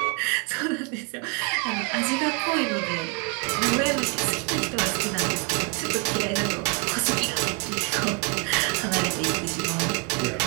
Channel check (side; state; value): left; quieter; 31.7 dB